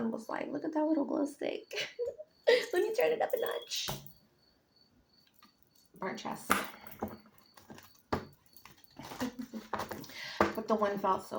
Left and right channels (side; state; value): both; identical; correlation 1.00